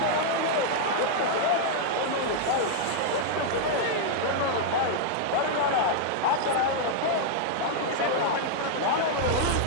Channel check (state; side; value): different; both; correlation -0.01